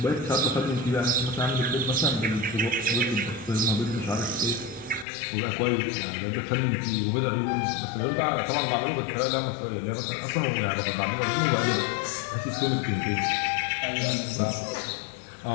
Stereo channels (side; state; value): right; drops out; at 5.1 s